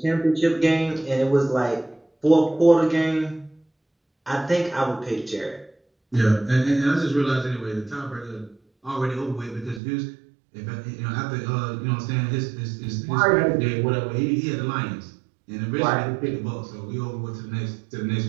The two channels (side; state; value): left; drops out; at 9.8 s